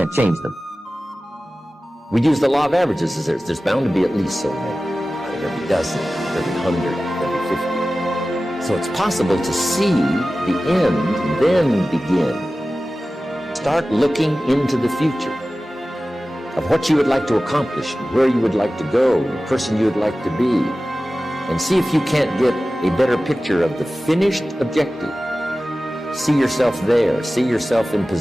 change them. We use the law of averages. There's bound to be at least so many. Out of every dozen, every 100, every 50. So it's possible to see the end and then begin. Start looking into the future of what you would like to accomplish, where you would like to go, the person you would like to be, and see if you can't get a better picture of the finished objective. See yourself there. See yourself in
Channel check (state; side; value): normal; both; correlation 0.96